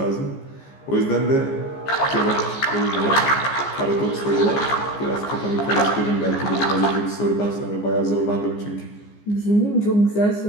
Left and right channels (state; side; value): late; right; 15 ms